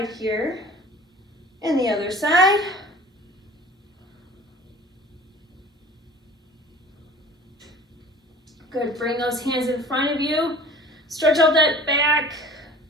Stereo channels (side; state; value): both; normal; correlation 0.44